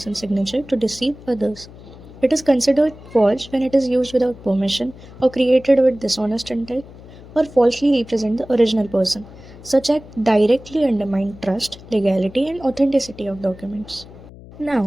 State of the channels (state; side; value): noise; left; hum, 19 dB below the sound